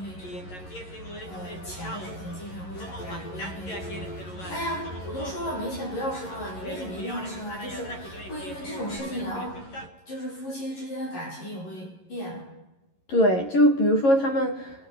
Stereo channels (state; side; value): late; right; 11 ms